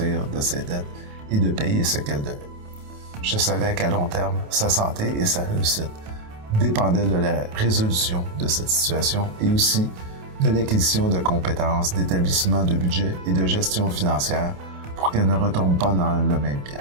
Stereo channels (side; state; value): left; late; 28 ms